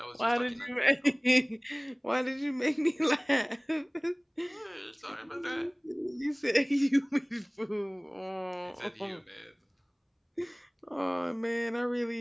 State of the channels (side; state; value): both; identical; correlation 1.00